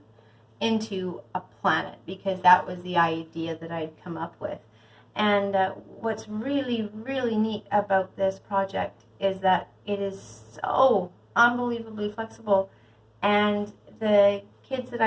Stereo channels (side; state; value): both; identical; correlation 1.00